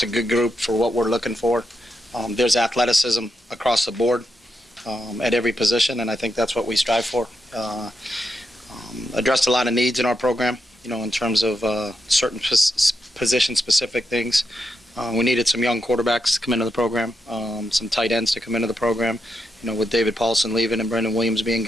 a good group for what we're looking for. There's athleticism across the board at every position, and I think that's what we strive for. Addressed a lot of needs in our program, in terms of certain position-specific things. We needed some young quarterbacks to come into the program, some tight ends to come into the program, with David Paulson leaving and Brendan Williams being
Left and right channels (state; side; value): normal; both; correlation 0.84